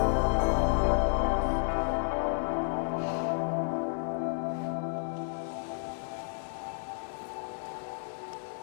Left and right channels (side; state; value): right; silent; 57 dB below the other